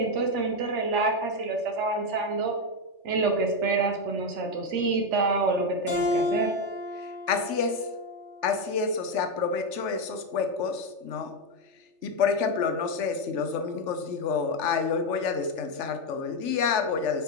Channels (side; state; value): left; late; 3.4 ms